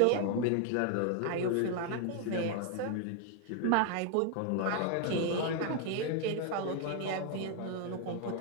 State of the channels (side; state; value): both; different; correlation 0.01